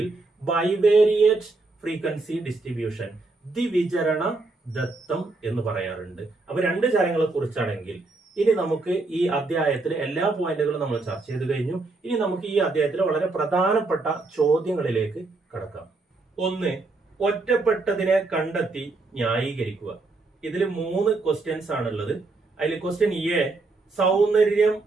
ബൈവേരിയേറ്റ് ഫ്രീക്വൻസി ഡിസ്ട്രിബ്യൂഷൻ, ദ്വിവിചരണ ദത്തം എന്ന് പറയാറുണ്ട്. അപ്പൊ 2 ചരങ്ങളെ കുറിച്ചാണെങ്കിൽ ഇനി നമുക്ക് ഈ അധ്യായത്തിലെ എല്ലാ പോയിന്റുകളും നമ്മൾ ചർച്ച ചെയ്ത് കഴിഞ്ഞു. ഇനി നമുക്ക് ഈ അധ്യായത്തിലെ വളരെ പ്രധാനപ്പെട്ട ചോദ്യങ്ങളിലേക്ക് കടക്കാം. 1, ഒറ്റപ്പെട്ടതിനെ കണ്ടെത്തി ന്യായീകരിക്കുക. ഇതിൽ 3 ക്വസ്റ്റ്യൻസ് ആണുള്ളത്. അതിൽ ക്വസ്റ്റ്യൻ എ, സൗന്ദര്യം,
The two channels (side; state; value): left; quieter; 3.5 dB